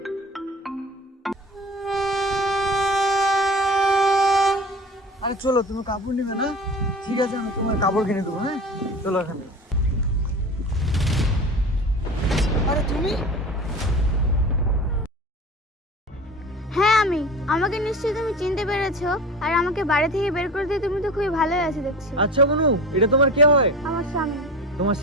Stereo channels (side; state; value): both; normal; correlation 0.35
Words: আরে চলো, তুমি কাপড় নিবে না? ঠিক আছে, আমি তোমার কাপড় কিনে দেবো। হ্যাঁ চলো এখানে। আরে তুমি? হ্যাঁ আমি। আমাকে নিশ্চয়ই তুমি চিনতে পেরেছো, আর আমাকে বাড়ি থেকে বের করে দিয়ে তুমি তো খুবই ভালোই আছো দেখছি। আচ্ছা বোনু, এটা তোমার কে হয়? আমার স্বামী। তোমার